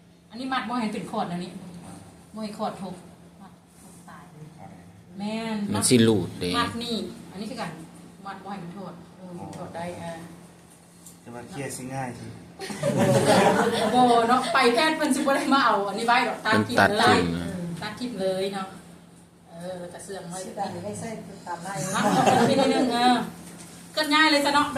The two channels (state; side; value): identical; both; correlation 1.00